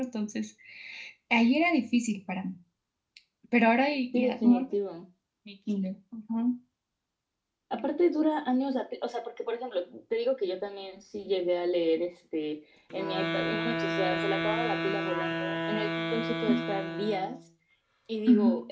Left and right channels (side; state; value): both; identical; correlation 1.00